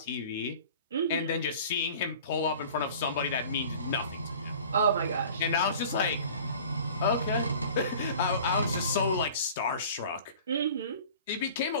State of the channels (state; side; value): inverted; both; correlation -0.44